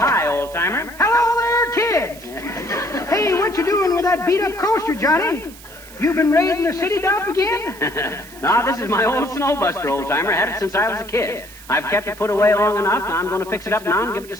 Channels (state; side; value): noise; right; hiss, 19 dB below the sound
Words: Oldtimer. Hello there, kids. Hey, what you doing with that beat-up coaster, Johnny? You been raiding the city dump again? No, this is my old snowbuster, Oldtimer. Had it since I was a kid. I've kept it put away long enough. Now I'm going to fix it up now and give it to